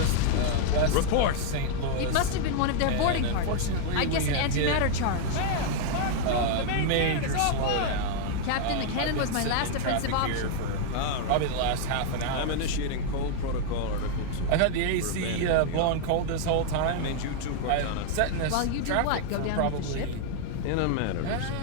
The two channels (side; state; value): both; different; correlation -0.01